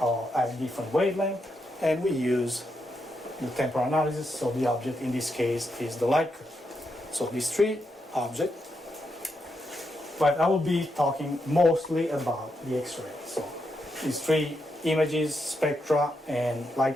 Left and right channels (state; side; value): normal; both; correlation 0.83